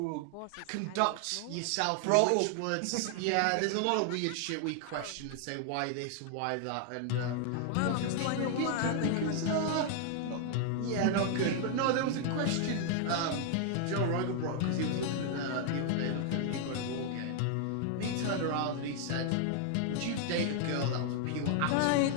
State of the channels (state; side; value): different; both; correlation 0.00